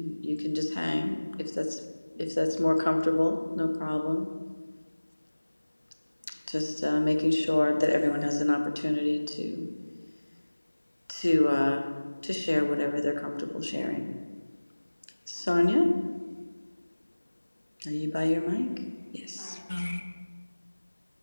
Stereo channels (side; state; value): both; inverted; correlation -1.00